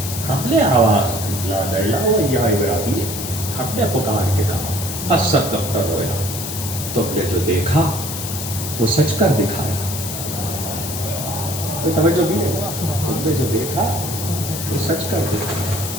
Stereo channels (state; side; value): noise; left; hiss, 6 dB below the sound